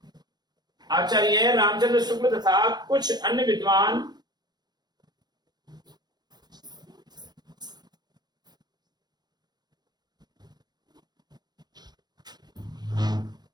आचार्य रामचंद्र शुक्ल तथा कुछ अन्य विद्वान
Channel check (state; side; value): late; left; 0.20 ms